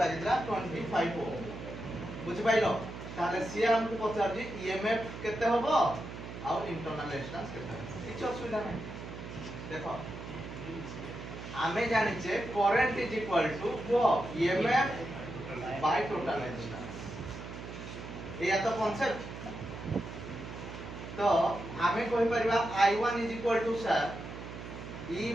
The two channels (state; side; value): noise; right; hum, 10 dB below the sound